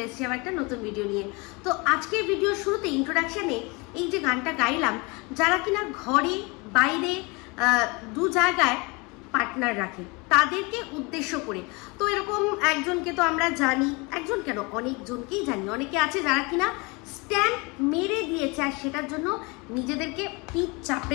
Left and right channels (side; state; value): right; quieter; 27.7 dB